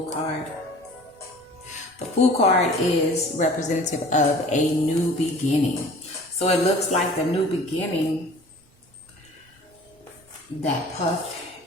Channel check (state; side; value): normal; both; correlation 0.46